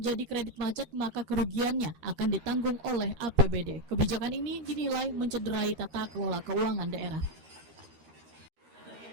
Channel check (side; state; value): left; late; 13 ms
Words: kredit macet maka kerugiannya akan ditanggung oleh APBD. Kebijakan ini dinilai mencederai tata kelola keuangan daerah.